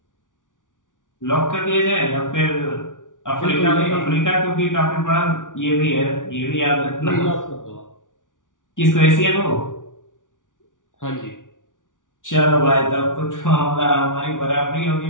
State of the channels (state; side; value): late; right; 0.88 ms